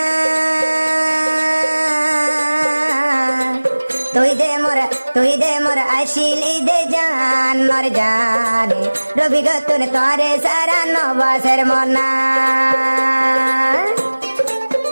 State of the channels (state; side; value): inverted; both; correlation -1.00